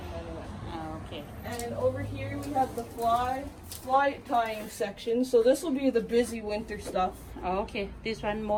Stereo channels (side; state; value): both; identical; correlation 1.00